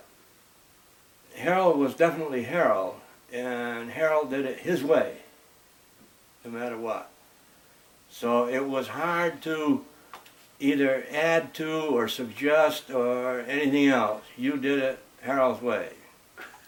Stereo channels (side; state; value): both; identical; correlation 1.00